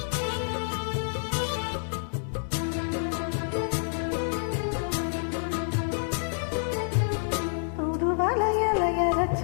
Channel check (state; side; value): silent; right; digital silence